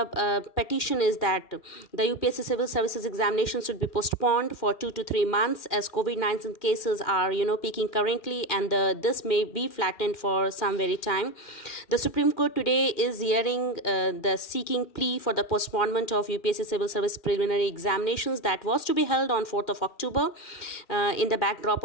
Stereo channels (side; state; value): right; late; 2.2 ms